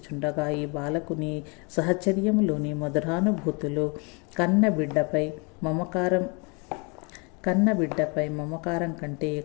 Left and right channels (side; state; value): right; quieter; 31.9 dB